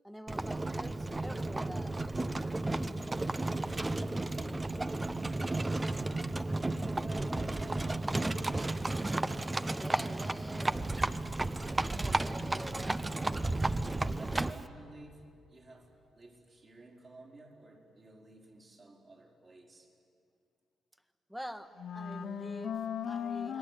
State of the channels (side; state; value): both; normal; correlation 0.95